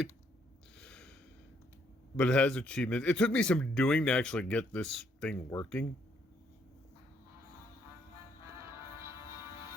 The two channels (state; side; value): normal; both; correlation 0.70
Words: it has achievements. It took me some doing to actually get this thing working.